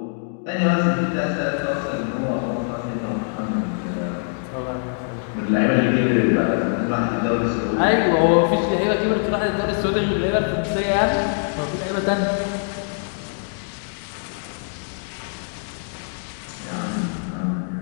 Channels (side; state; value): right; silent; digital silence